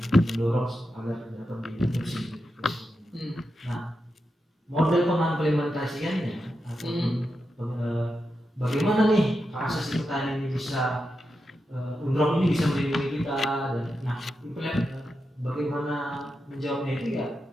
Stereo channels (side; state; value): both; normal; correlation 0.88